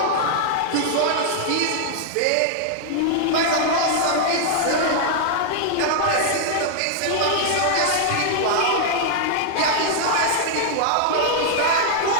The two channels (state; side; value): different; both; correlation 0.00